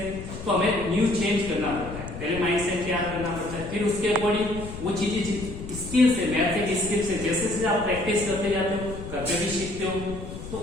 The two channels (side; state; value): left; noise; rumble, 11 dB below the sound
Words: तो हमें न्यू चेंज करना पड़ता है, पहले माइंडसेट तैयार करना पड़ता है, फिर उसके अकॉर्डिंग वो चीजें स्किल्स है, मैथ एक स्किल्स है, जैसे जैसे आप प्रैक्टिस करते जाते हो, करते भी सीखते हो, तो